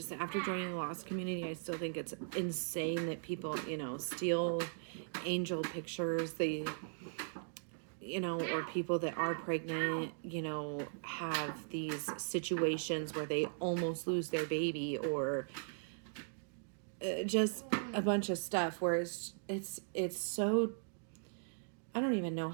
after joining the lost community, I still think it's insane that people, you know, steal angel pictures. They, you know, or people that are pregnant, you know, have these situations where they almost lose their baby, or just a bunch of stuff where it's so, I don't even know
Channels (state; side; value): silent; left; digital silence